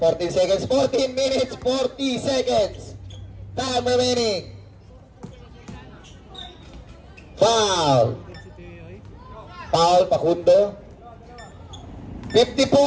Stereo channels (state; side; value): identical; both; correlation 1.00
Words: minutes, 40 seconds. Time remaining. Foul. Foul, Pakundo.